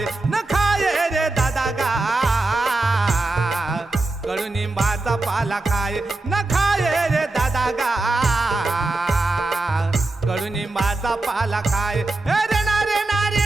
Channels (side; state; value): left; quieter; 3.1 dB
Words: न खाये रे दादा गा, कडुनिंबाचा पाला खाये न खाये रे दादा गा, कडुनिंबाचा पाला खाये रे ना रे ना रे